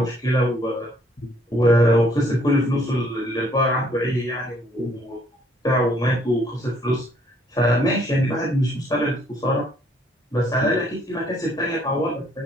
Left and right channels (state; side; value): normal; both; correlation 0.65